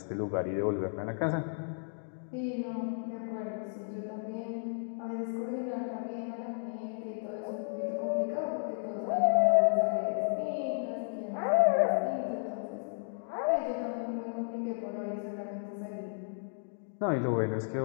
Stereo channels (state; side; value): silent; right; digital silence